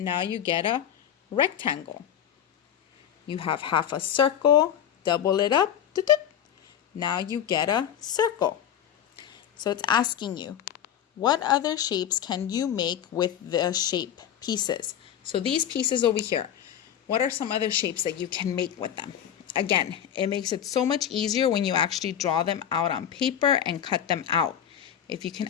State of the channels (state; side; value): quieter; right; 9.7 dB